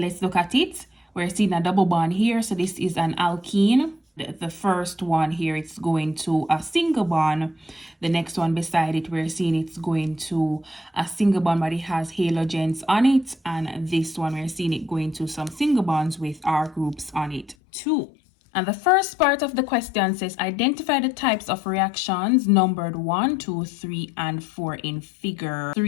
look at it. We're seeing a double bond here. So this is an alkene. The first one here, it's going to a single bond. The next one beside it, we're seeing it's going to a single bond, but it has halogens on it. And this one, we're seeing it going to some single bonds with R groups on it too. And the first part of the question says, identify the types of reactions numbered 1, 2, 3, and 4 in figure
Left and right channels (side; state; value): right; drops out; at 17.6 s